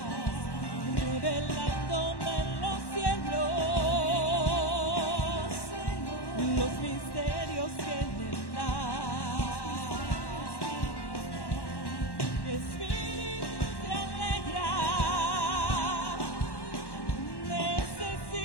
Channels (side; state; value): right; late; 1.1 ms